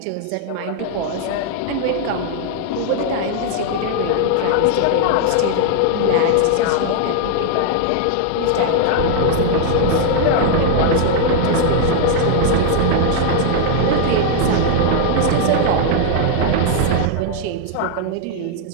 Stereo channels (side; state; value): both; different; correlation 0.00